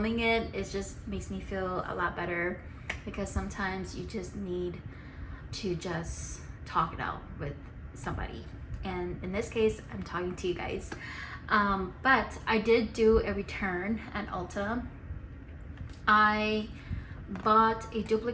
it just makes me feel a lot better, because sometimes you just need to just talk it out with somebody, and in this case I'm talking to you guys. But I did do a return at Ulta. I bought a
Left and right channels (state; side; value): identical; both; correlation 1.00